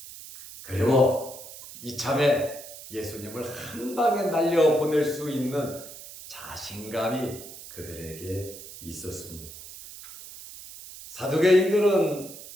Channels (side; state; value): right; noise; hiss, 15 dB below the sound